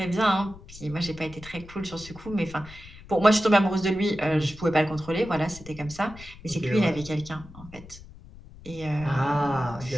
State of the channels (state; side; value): noise; left; rumble, 18 dB below the sound